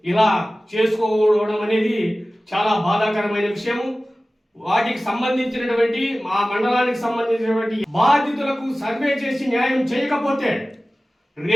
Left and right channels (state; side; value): normal; both; correlation 0.97